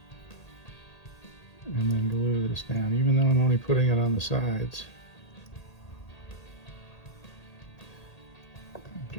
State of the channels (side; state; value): right; late; 1.8 ms